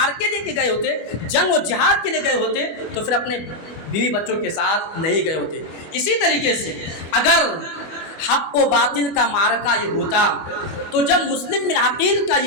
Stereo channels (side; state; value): right; late; 25 ms